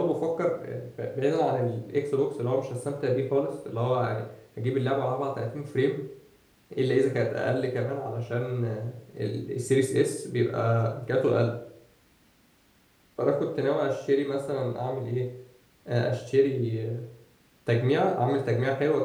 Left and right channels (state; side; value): identical; both; correlation 1.00